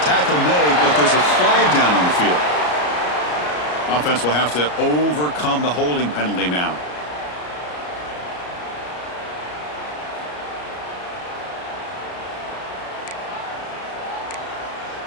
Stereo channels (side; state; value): right; late; 33 ms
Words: Tackle made, but there's a flag down on the field. Offense will have to overcome the holding penalty now.